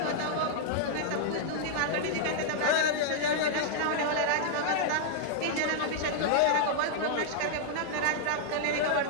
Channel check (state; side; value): different; both; correlation -0.01